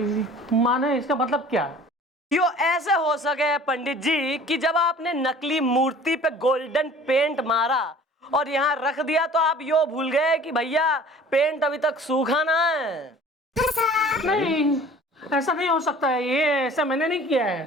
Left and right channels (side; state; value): both; normal; correlation 0.47